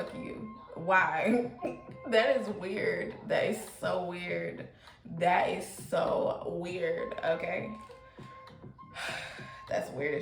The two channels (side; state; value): both; identical; correlation 1.00